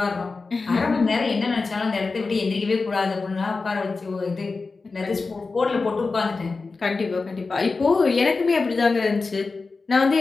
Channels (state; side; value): quieter; right; 4.1 dB